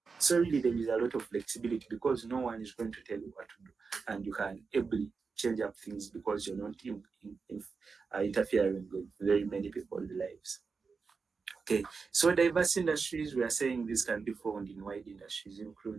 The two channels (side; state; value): left; quieter; 4.9 dB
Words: So really, there is a lot of flexibility because no one is going to tell you what to do, and you can ably change up things because you're not interfering with very many people's lives. Okay, so diverse industries, we are saying this can be found in wide industries,